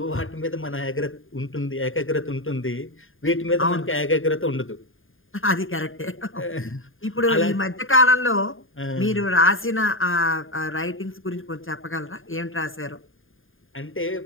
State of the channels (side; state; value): right; late; 0.59 ms